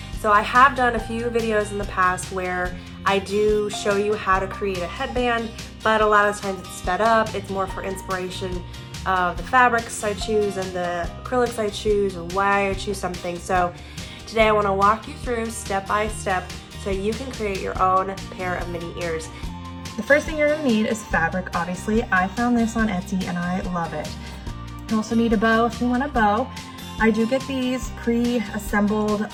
So I have done a few videos in the past where I do show you how to create a headband, but a lot of times it's sped up. It's more for inspiration of the fabrics I choose and the acrylics I choose or why I choose something. So today I want to walk you through step by step so you can create your own pair of mini ears. The first thing you're going to need is fabric, obviously. I found this on Etsy and I love it. You also need a bow if you want a bow. I do get these pre-assembled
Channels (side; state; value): both; identical; correlation 1.00